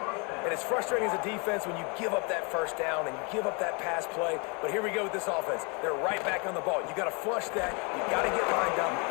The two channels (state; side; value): quieter; right; 32.1 dB